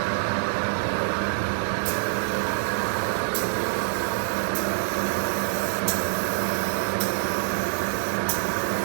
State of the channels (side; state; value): left; silent; digital silence